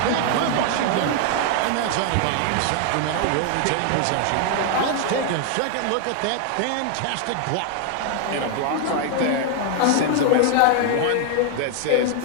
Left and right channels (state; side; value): different; both; correlation 0.00